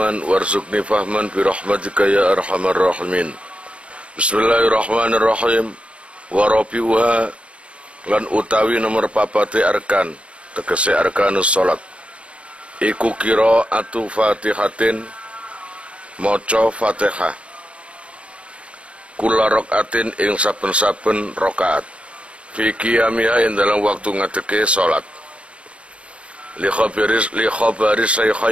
warzuqni fahman bi rahmatika ya arhamar rahimin. Bismillahirrahmanirrahim. Wa rabi'uha lan utawi nomor papate arkan, tegese arkanus salat. Iku qiraatu Fatihatin, maca Fatihah. Kula rakaatin ing saben-saben rakaat. Fi qiyamiha ing dalam waktu ngadeke salat. Li khabari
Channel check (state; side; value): late; left; 0.061 ms